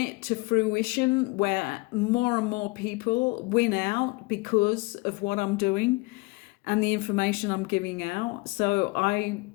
to fruition where more and more people win out because of what I'm doing and the information I'm giving out. So I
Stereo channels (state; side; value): quieter; right; 25.4 dB